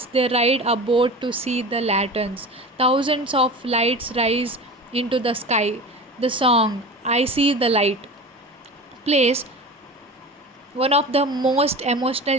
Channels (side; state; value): both; normal; correlation 0.33